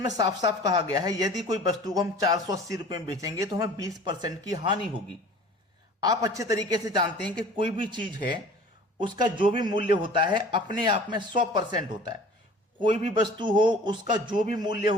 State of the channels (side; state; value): both; normal; correlation 0.45